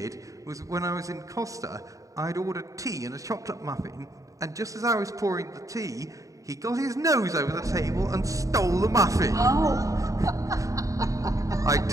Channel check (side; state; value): left; late; 0.16 ms